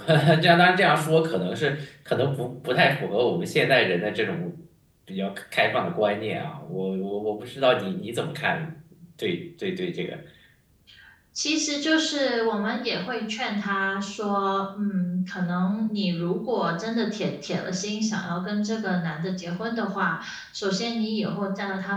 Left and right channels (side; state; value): both; identical; correlation 1.00